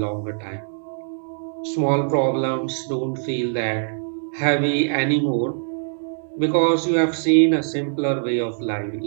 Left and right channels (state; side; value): silent; left; digital silence